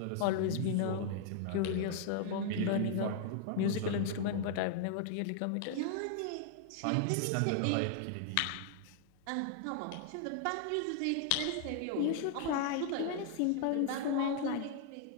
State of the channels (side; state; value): both; different; correlation 0.00